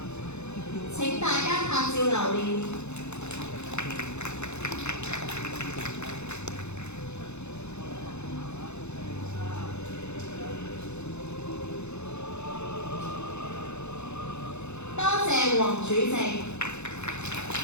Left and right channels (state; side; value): late; right; 0.82 ms